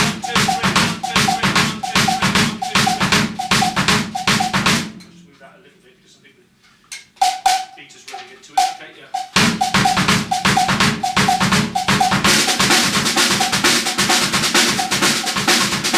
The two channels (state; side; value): identical; both; correlation 1.00